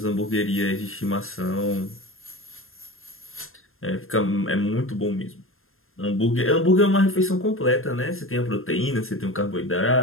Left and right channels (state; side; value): late; right; 0.61 ms